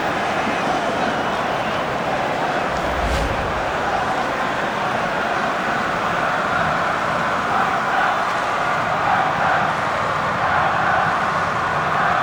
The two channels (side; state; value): both; identical; correlation 1.00